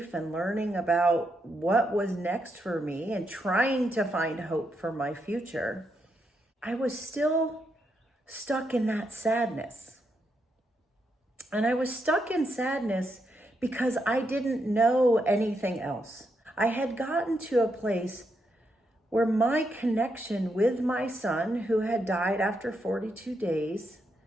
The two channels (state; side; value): normal; both; correlation 0.81